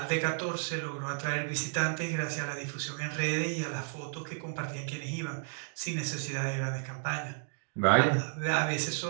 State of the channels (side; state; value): left; silent; digital silence